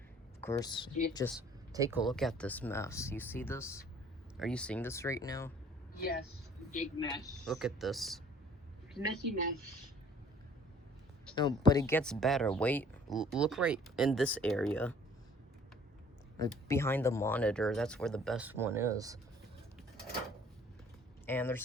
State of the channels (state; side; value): normal; both; correlation 0.55